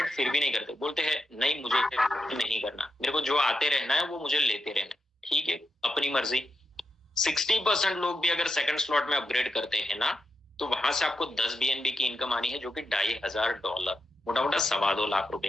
फिर भी नहीं करते, बोलते हैं नहीं मुझे नहीं करना, मेरे को जो आते रहना है वो मुझे लेते रहना है। ठीक है, अपनी मर्जी। 60% लोग भी अगर सेकंड स्लॉट में अपग्रेड करते हैं ना, तो वहां से आपको 10 BNB की इनकम आनी है, जो कि $2,500, मोटा मोटा 2.25 लाख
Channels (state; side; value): normal; both; correlation 0.85